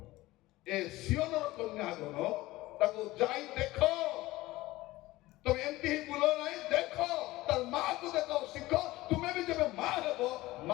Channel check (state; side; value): quieter; right; 18.4 dB